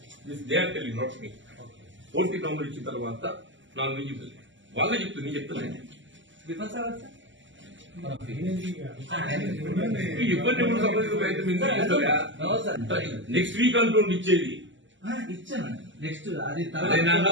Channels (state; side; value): late; left; 0.55 ms